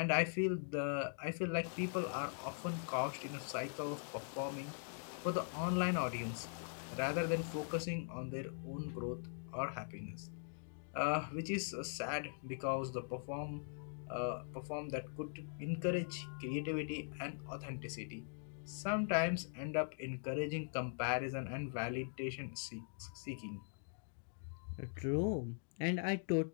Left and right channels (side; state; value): right; silent; digital silence